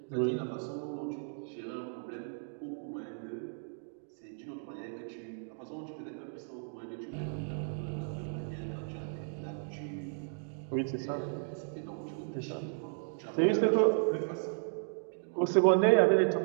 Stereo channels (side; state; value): left; silent; digital silence